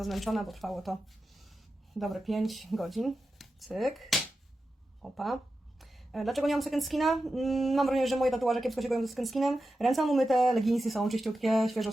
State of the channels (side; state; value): both; normal; correlation 0.91